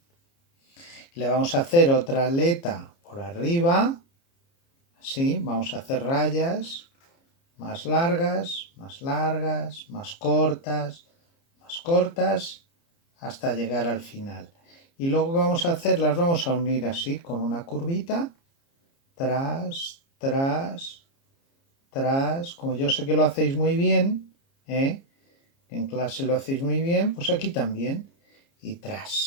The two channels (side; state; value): right; late; 29 ms